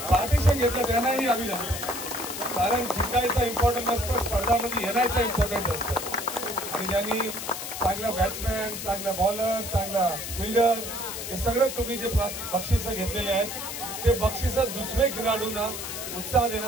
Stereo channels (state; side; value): noise; left; hiss, 7 dB below the sound